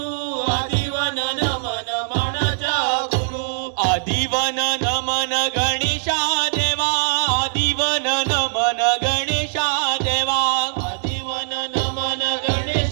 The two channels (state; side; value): silent; left; 65 dB below the other